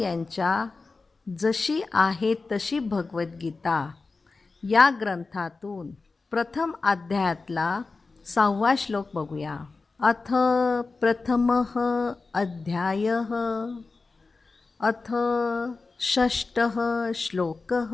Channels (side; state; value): right; quieter; 3.9 dB